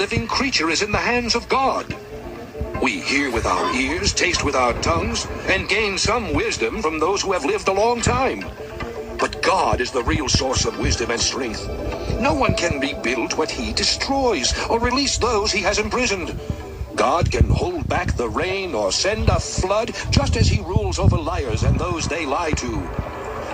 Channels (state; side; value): identical; both; correlation 1.00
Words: creature is in the hands of God. We hear with our ears, taste with our tongues, and gain some wisdom from those who have lived a long time. But God is the real source of wisdom and strength. No one can rebuild what he destroys or release those he has imprisoned. God can hold back the rain or send a flood just as he rules over liars and those they lie to.